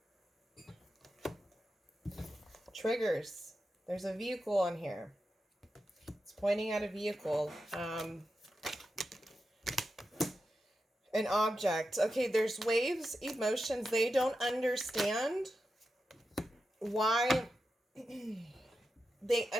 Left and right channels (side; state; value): both; normal; correlation 0.89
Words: Triggers. There's a vehicle on here. It's pointing at a vehicle. An object. Okay, there's waves, emotions. They don't understand why. They